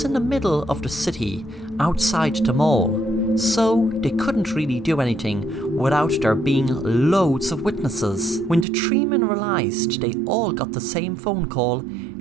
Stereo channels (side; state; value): left; drops out; at 8.7 s